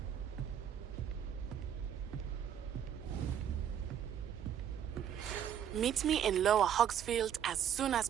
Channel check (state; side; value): quieter; left; 9.3 dB